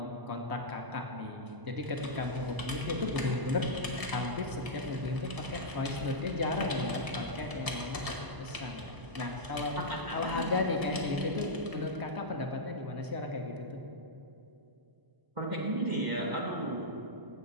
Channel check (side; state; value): left; late; 1.0 ms